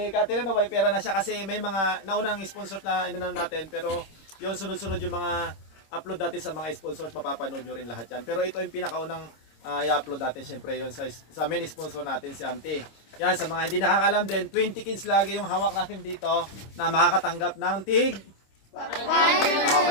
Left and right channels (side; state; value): right; late; 26 ms